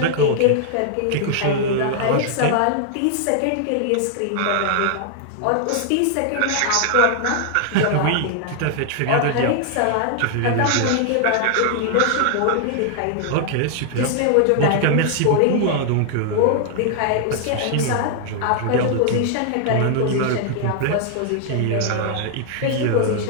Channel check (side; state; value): both; different; correlation 0.00